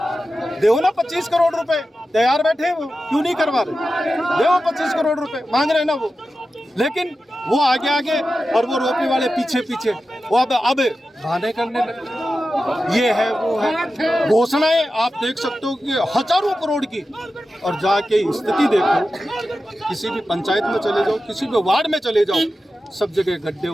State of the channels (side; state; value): both; normal; correlation 0.92